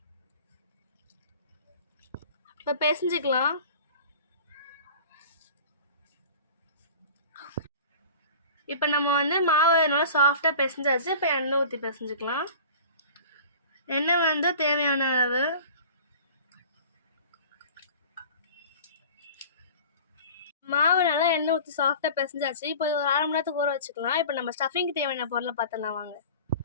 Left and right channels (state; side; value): inverted; both; correlation -0.41